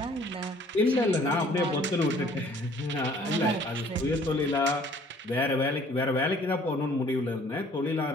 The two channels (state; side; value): normal; both; correlation 0.56